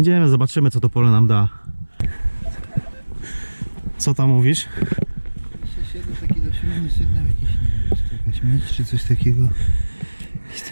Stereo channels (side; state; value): both; inverted; correlation -1.00